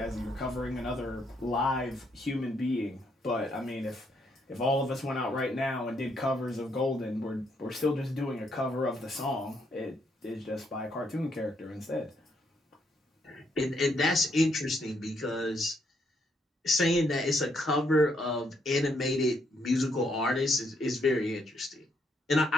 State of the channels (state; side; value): normal; both; correlation 0.74